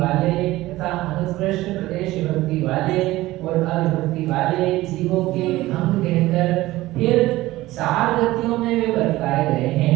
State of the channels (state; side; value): quieter; left; 17.4 dB